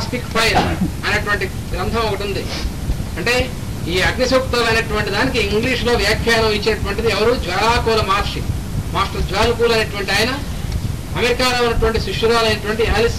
ఫైర్ అనేటువంటి గ్రంథం ఒకటి ఉంది. అంటే ఈ అగ్నిసూక్తాలు అనేటువంటి దానికి ఇంగ్లీష్లో వ్యాఖ్యానం ఇచ్చేటువంటిది ఎవరు? జ్వాలాకూల మహర్షి, మాస్టర్ జ్వాలకూల్ అనేటువంటి ఆయన అమెరికాలో ఉన్నటువంటి శిష్యురాలైనటువంటి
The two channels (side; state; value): both; identical; correlation 1.00